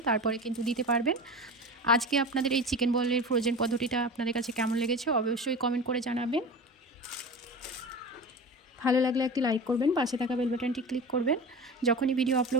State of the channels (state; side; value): normal; both; correlation 0.31